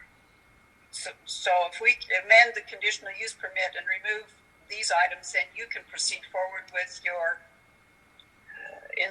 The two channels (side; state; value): both; identical; correlation 1.00